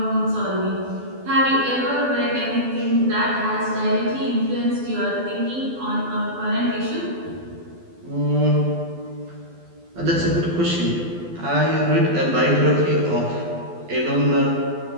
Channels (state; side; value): late; left; 12 ms